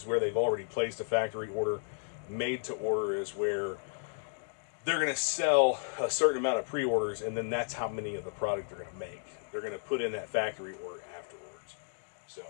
where they've already placed a factory order. Made to order is where they're going to sell a certain amount of pre-orders, and then that's how many of the product they're going to make. They're going to put in that factory order afterwards. So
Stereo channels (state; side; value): silent; right; digital silence